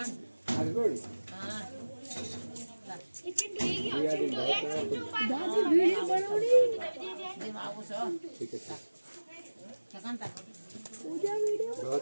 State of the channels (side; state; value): both; inverted; correlation -1.00